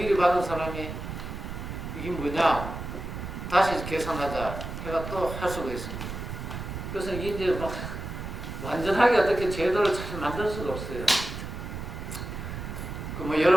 받은 사람이 이게 뭐냐 다시 계산하자 해가 또 할 수가 있습니다. 그래서 이제 막 완전하게 어떻게 제도를 잘 만들 수가 없어요. 그 뭐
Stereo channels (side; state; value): right; noise; rumble, 7 dB below the sound